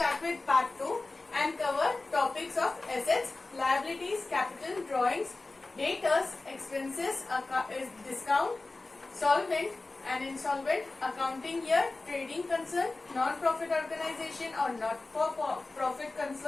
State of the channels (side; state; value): right; quieter; 3.3 dB